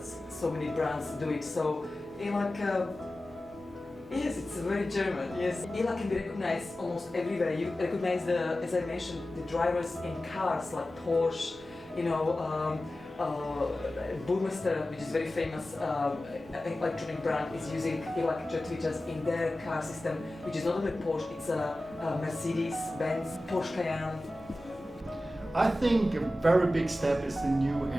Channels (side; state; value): both; normal; correlation 0.95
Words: so many brands do it. So Ilac, yes, it's very German. Yes, Ilac can be recognized almost everywhere. You recognize as I mentioned, the drivers in cars like Porsche, Burmester, which is very famous electronic brand, is using ELAC jet tweeters in their car system, which is not only Porsche, it's a Mercedes, Benz, Porsche Cayenne. I think a very big step is the new